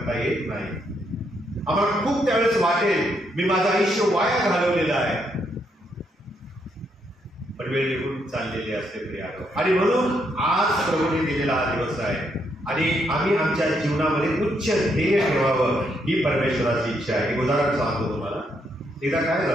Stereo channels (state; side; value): normal; both; correlation 0.76